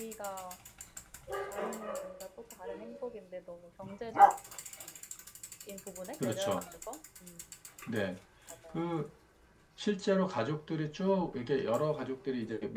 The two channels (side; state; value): both; identical; correlation 1.00